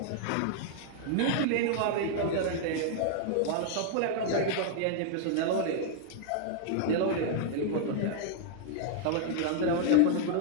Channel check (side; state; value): both; different; correlation 0.00